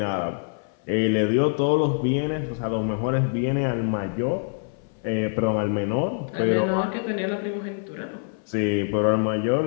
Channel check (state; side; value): silent; right; 58 dB below the other